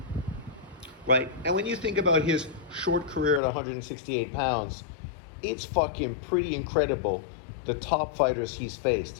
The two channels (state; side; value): drops out; right; at 3.4 s